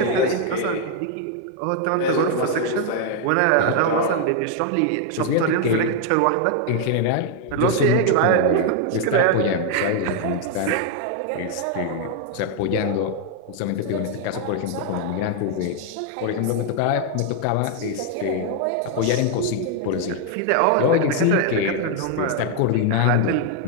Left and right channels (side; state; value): both; different; correlation 0.00